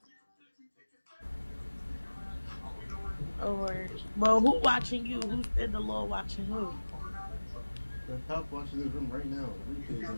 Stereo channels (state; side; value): inverted; both; correlation -1.00